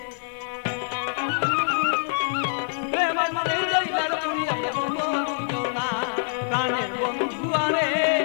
প্রেম মনে জইলার পুরিয়া বন্ধু দুইজনা প্রাণের বন্ধু আরে,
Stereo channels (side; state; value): right; silent; digital silence